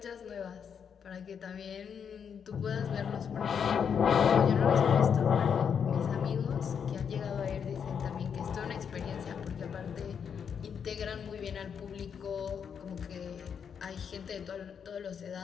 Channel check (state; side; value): quieter; right; 7.2 dB